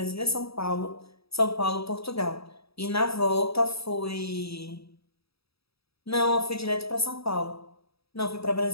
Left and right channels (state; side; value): late; right; 0.77 ms